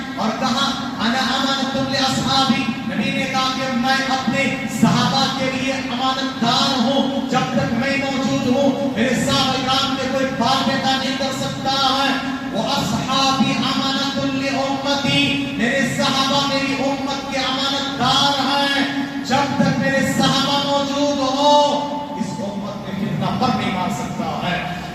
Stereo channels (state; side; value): identical; both; correlation 1.00